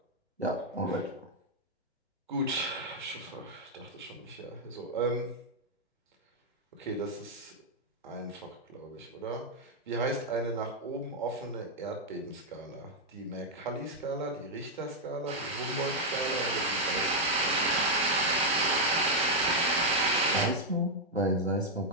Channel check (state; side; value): normal; both; correlation -0.02